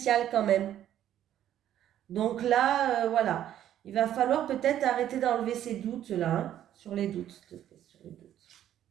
quand même. Donc là, voilà. Il va falloir peut-être arrêter d'enlever ces doutes là, hein, sur les doutes, s'il te plaît, sur les doutes.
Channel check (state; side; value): quieter; left; 11.3 dB